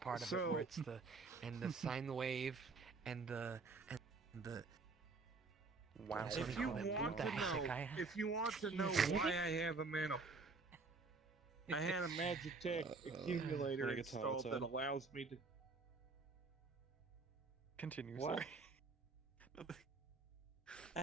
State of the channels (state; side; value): quieter; left; 4.0 dB